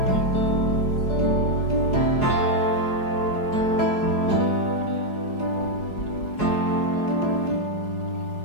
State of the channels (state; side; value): late; right; 4.7 ms